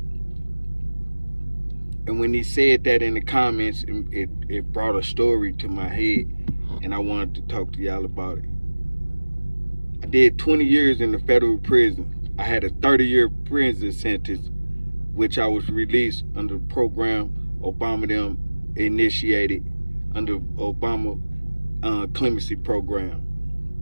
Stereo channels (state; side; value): inverted; both; correlation -1.00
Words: And when he said that in the comments, it brought a story to my head, and I wanted to talk to y'all about it. I did 20 years in the federal prison. I had a 30-year prison sentence, which I was released under the program Obama them initiated under Obama clemency program.